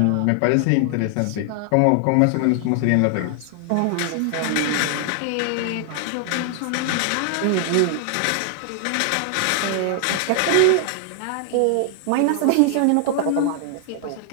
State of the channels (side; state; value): both; different; correlation 0.00